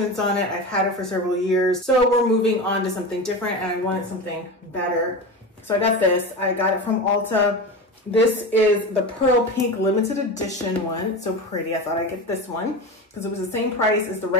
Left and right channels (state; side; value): normal; both; correlation 0.25